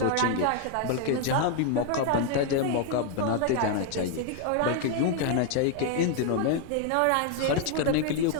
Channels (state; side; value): different; both; correlation 0.00